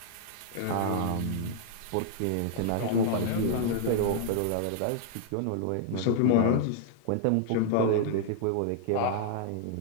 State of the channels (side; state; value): both; different; correlation -0.01